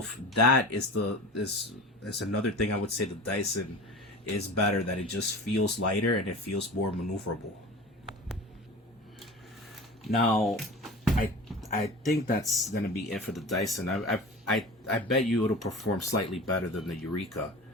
that is another thing I would say the Dyson is better, that it just feels lighter and it feels more maneuverable. Now, I think that's gonna be it for the Dyson. I bet you it'll perform slightly better than the Eureka,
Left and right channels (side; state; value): both; normal; correlation 0.36